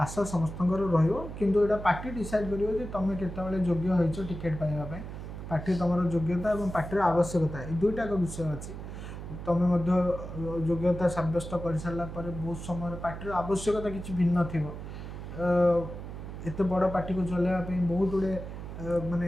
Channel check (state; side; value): noise; right; hum, 9 dB below the sound